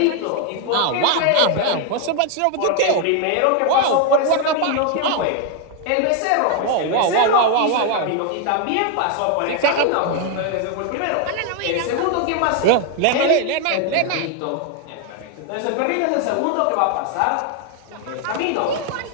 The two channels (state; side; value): different; both; correlation 0.01